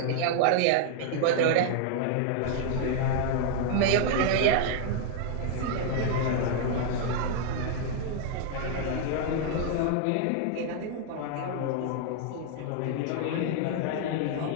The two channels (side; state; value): both; different; correlation 0.00